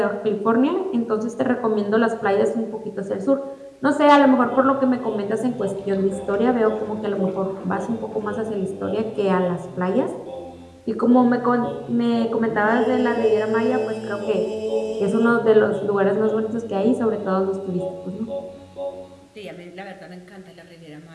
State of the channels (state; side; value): identical; both; correlation 1.00